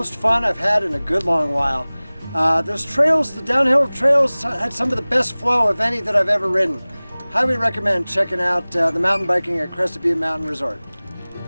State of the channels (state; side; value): inverted; both; correlation -0.99